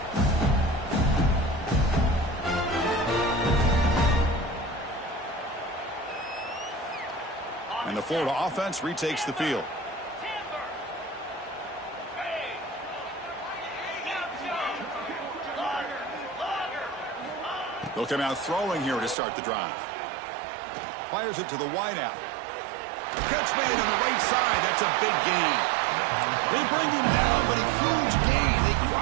And the Florida offense retakes the field. They'll come out throwing here to start the drive. Fires it to the wideout. Catch made on the right side. That's a big gain. They bring him down, but a huge gain. They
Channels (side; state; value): left; drops out; at 19.2 s